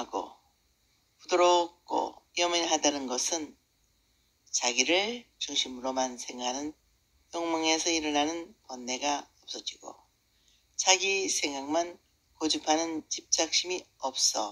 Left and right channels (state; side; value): identical; both; correlation 1.00